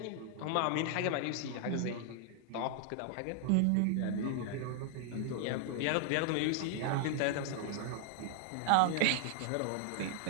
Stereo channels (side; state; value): both; different; correlation 0.00